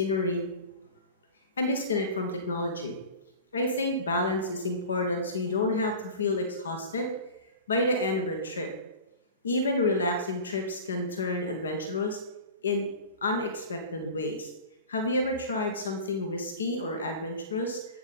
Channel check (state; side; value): inverted; both; correlation -0.36